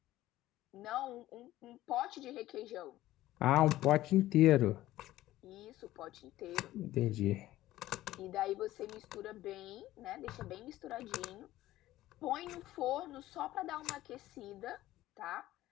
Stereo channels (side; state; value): right; quieter; 15.4 dB